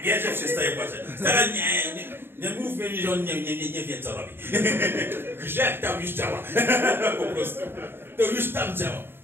bierzesz, przestaje płakać. Stara, nie mów mi, że on nie wie, co robi. Grzech tam już działa. Po prostu. To już tam działa.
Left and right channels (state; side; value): late; left; 0.11 ms